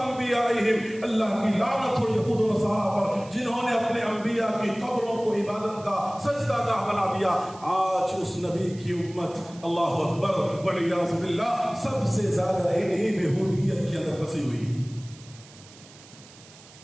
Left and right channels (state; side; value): noise; right; hiss, 22 dB below the sound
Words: اللہ کی لعنت ہو یہود و نصارہ پر جنہوں نے اپنے انبیاء کی قبروں کو عبادت کا سجدہ گاہ بنا دیا۔ آج اس نبی کی امت، اللہ اکبر والعیاذ باللہ، سب سے زیادہ انہی بےہودگیت کے اندر پھنسی ہوئی۔